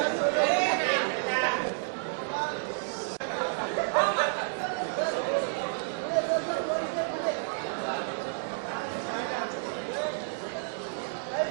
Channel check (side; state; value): left; silent; digital silence